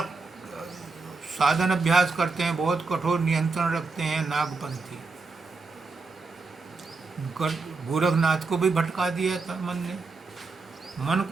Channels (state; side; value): quieter; left; 4.1 dB